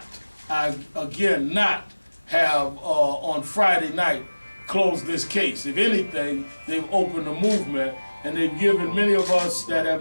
again, not have on Friday night closed this case. If anything, they've opened a movement and they've given many of us that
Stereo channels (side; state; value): both; inverted; correlation -1.00